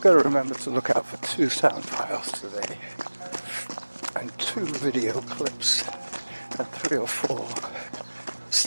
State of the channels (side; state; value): both; inverted; correlation -1.00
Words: got to remember to look out for 2 sound files today, and 2 video clips, and 3 or 4